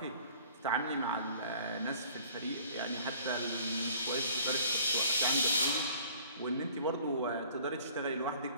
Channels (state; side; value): inverted; both; correlation -0.52